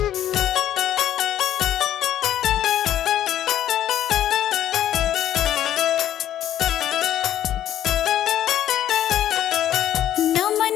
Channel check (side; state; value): right; quieter; 11.6 dB